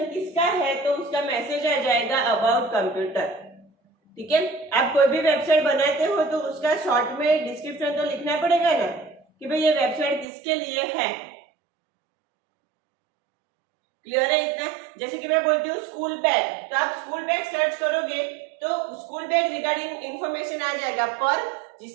किसका है? तो उसका मैसेज आ जाएगा अबाउट कंप्यूटर, ठीक है। आप कोई भी वेबसाइट बनाते हो तो उसका शॉर्ट में डिस्क्रिप्शन तो लिखना पड़ेगा ना, कि भाई ये वेबसाइट किसके लिए है। क्लियर है इतना? जैसे कि मैं बोलती हूँ स्कूल बैग, तो आप स्कूल बैग सर्च करोगे तो स्कूल बैग रिगार्डिंग इंफॉर्मेशन आ जाएगा, पर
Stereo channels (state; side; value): drops out; left; at 10.2 s